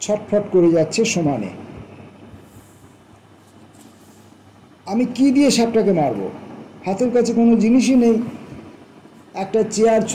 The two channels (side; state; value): both; identical; correlation 1.00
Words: ছটফট করে যাচ্ছে সমানে। আমি কি দিয়ে সাপটাকে মারব? হাতের কাছে কোনো জিনিসই নেই। একটা চেয়ার